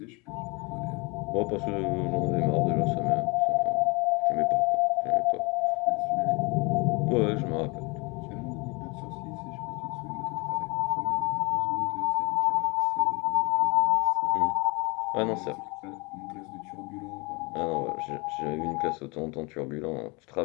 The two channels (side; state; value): right; quieter; 28.2 dB